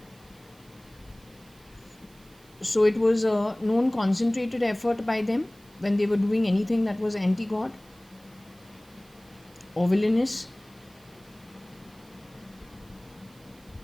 So it was a known concentrated effort by them when they were doing anything that was anti-god or villainous.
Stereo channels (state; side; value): noise; right; hiss, 28 dB below the sound